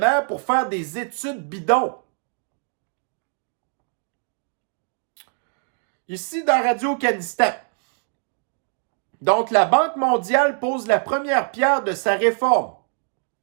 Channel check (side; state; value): left; silent; 63 dB below the other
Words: pour faire des études bidons. Ici, dans Radio-Kanistan. Donc, la Banque mondiale pose la première pierre de sa réforme.